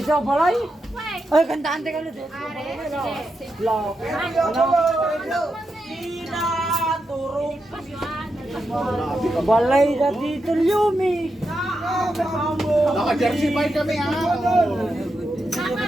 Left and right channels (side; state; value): both; normal; correlation 0.86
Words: sa balay? Ay, kantaan teka ulit. Block. Balay na dito, Yumi. Naka-jersey pa kami ah.